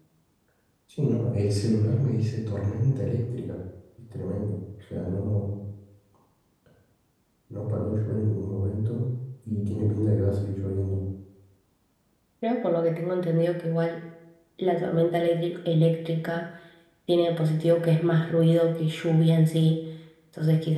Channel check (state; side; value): identical; both; correlation 1.00